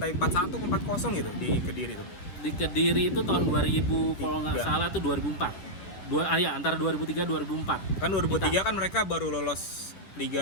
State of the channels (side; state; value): right; late; 11 ms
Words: 4-1 ke 4-0 gitu di Kediri tuh. Di Kediri itu tahun 2000 kalau nggak Tiga. salah tuh 2004. Ya antara 2003 2004. Kan 2003 kan mereka baru lolos